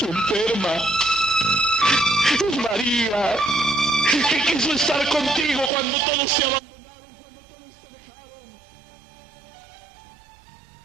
enferma. Es María que quiso estar contigo cuando todos te abandonaron, cuando todos te dejaron.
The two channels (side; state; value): left; drops out; at 6.0 s